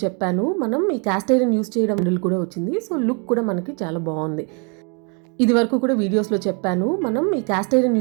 చెప్పాను, మనం ఈ క్యాస్ట్ ఐరన్ యూస్ చేయడం హ్యాండిల్ కూడా వచ్చింది. సో లుక్ కూడా మనకి చాలా బాగుంది. ఇది వరకు కూడా వీడియోస్లో చెప్పాను, మనం ఈ క్యాస్ట్ ఐరన్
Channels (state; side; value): quieter; left; 35.8 dB